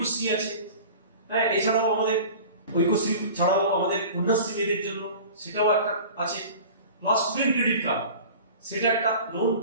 আছে। হ্যাঁ, এছাড়াও আমাদের ঐক্যশ্রী ছাড়াও আমাদের কন্যাশ্রী মেয়েদের জন্য সেটাও একটা আছে, প্লাস স্টুডেন্ট ক্রেডিট কার্ড, সেটা একটা লোন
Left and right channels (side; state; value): both; inverted; correlation -0.39